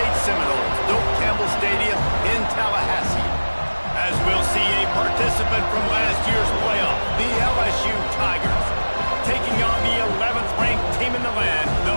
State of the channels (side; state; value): both; inverted; correlation -1.00